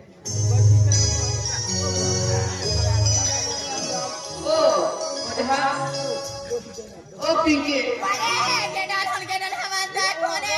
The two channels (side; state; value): both; identical; correlation 1.00